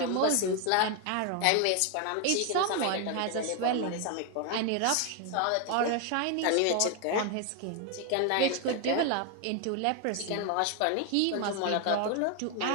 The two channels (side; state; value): both; different; correlation 0.01